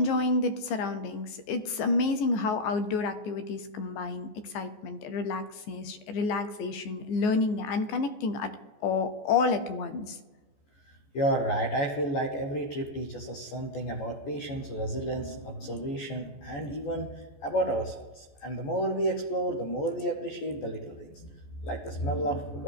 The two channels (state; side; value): late; right; 14 ms